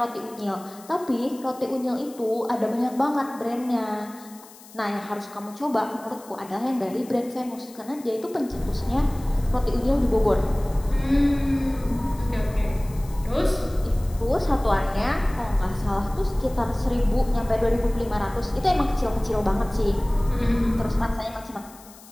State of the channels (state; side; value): noise; left; hiss, 21 dB below the sound